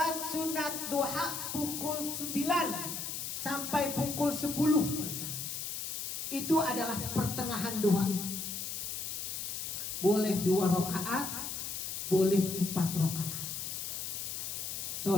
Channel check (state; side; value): noise; left; hiss, 4 dB below the sound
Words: sunat duha pukul 9 sampai pukul 10. Itu adalah pertengahan duha. Boleh 2 rakaat, boleh 4 rakaat.